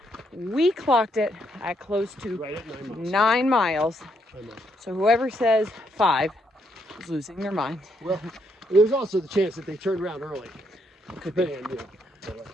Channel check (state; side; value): normal; both; correlation 0.75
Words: We clocked it at close to Right at 9 miles. So whoever says 5 is losing their mind. Well, there's also the chance that they turned around early. Could be.